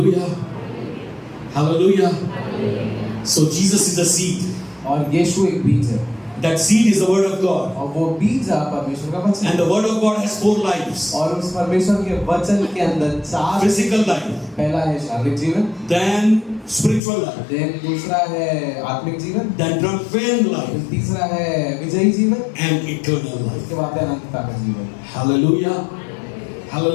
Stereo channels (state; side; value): drops out; right; at 17.0 s